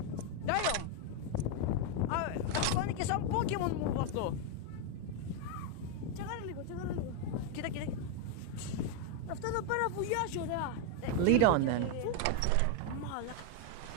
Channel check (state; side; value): different; both; correlation 0.01